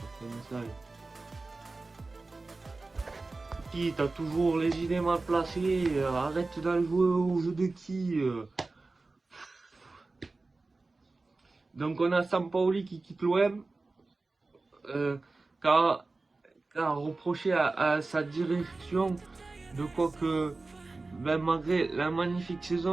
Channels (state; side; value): quieter; left; 3.5 dB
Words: un message. Qui t'as toujours les idées mal placées, arrête d'aller jouer au jeu de qui. Donc on a Sampaoli qui quitte l'OM, car reproché à sa direction de quoi que, ben, malgré la magnifique